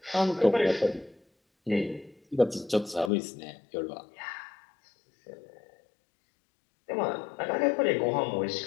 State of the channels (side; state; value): right; drops out; at 3.1 s